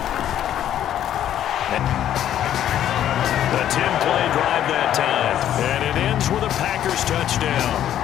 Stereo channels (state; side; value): quieter; right; 11.1 dB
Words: The 10-play drive that time. And it ends with a Packers touchdown.